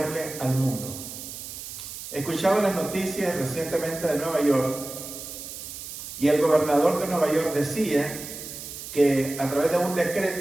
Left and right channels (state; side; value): noise; right; hiss, 10 dB below the sound